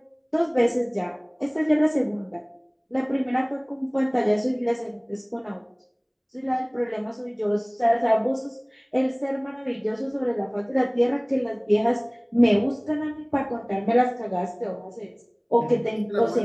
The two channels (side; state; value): both; identical; correlation 1.00